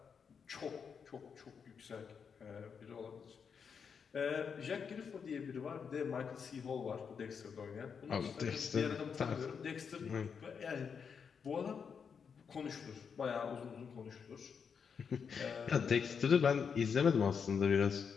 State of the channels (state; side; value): quieter; right; 6.5 dB